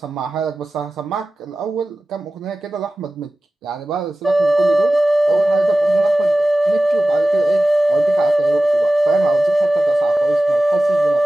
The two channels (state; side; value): normal; both; correlation 0.96